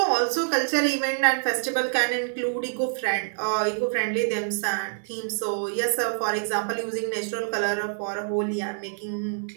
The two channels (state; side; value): silent; left; digital silence